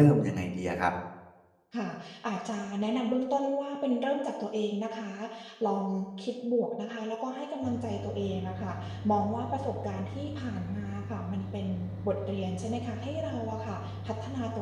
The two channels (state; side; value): identical; both; correlation 1.00